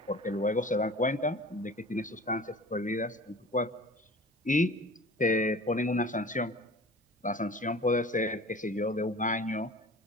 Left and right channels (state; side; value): normal; both; correlation 0.41